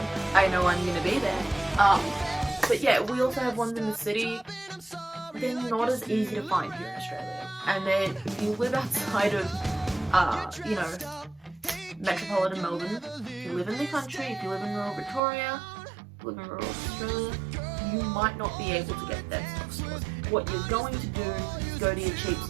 I know I'm going to be there. But yeah, we also have ones in the city. They're not as easy to find here in Australia. And then if you live outside of, you know, metropolitan Melbourne, if you live in the country, if you live in rural Victoria, live in rural Australia, you might not be able to get dead stock stores. What you're going to do is go to your cheap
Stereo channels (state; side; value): drops out; left; at 15.2 s